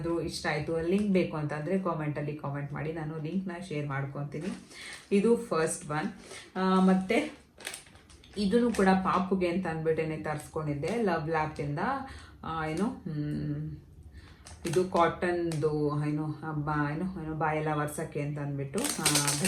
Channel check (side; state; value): both; identical; correlation 1.00